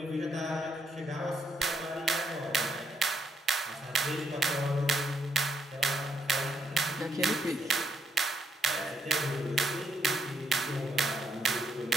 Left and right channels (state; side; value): normal; both; correlation 0.76